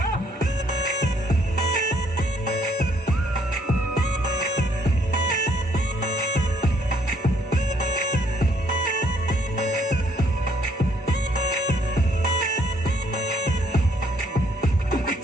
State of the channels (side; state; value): both; normal; correlation 0.66